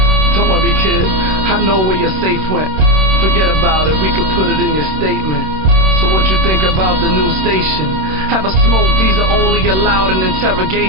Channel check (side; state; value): left; late; 26 ms